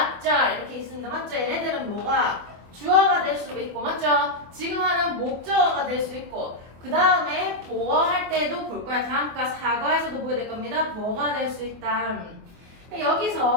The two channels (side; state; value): left; late; 24 ms